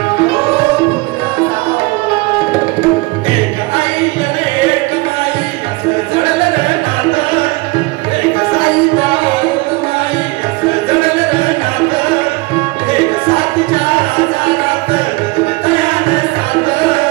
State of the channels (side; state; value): left; quieter; 23.8 dB